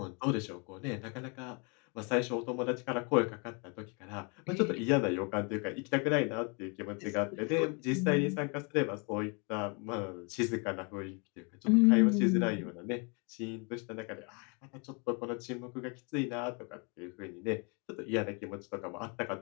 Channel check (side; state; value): right; quieter; 33.7 dB